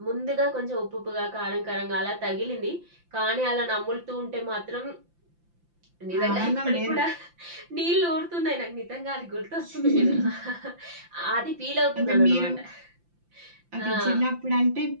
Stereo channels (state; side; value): late; left; 5.8 ms